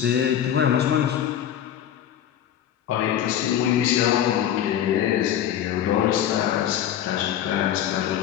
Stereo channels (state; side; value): quieter; right; 10.4 dB